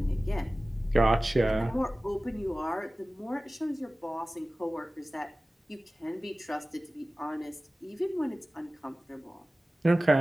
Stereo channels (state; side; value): normal; both; correlation 0.97